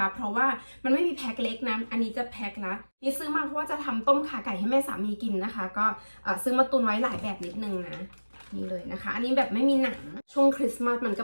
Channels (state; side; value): inverted; both; correlation -1.00